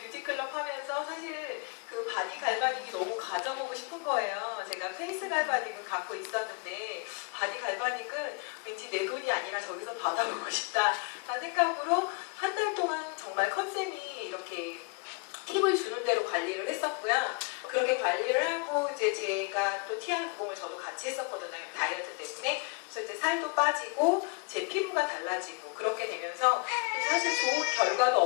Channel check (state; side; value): quieter; right; 31.2 dB